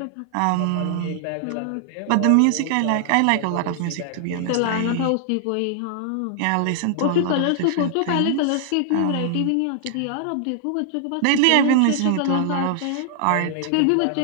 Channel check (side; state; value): both; different; correlation 0.00